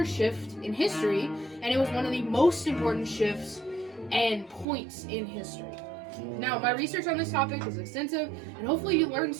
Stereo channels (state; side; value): drops out; left; at 4.7 s